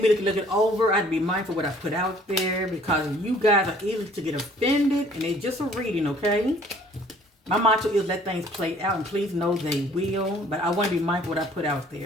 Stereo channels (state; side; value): normal; both; correlation 0.57